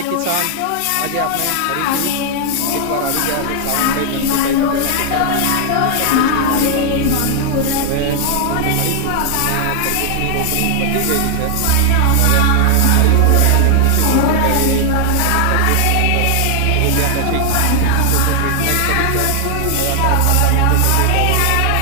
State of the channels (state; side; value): different; both; correlation 0.00